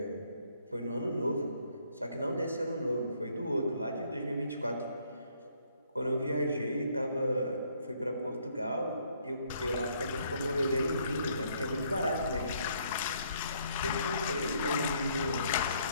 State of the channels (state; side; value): inverted; both; correlation -0.67